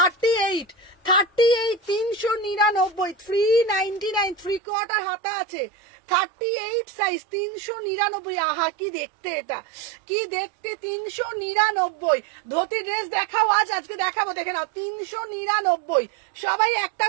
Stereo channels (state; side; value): drops out; left; at 4.6 s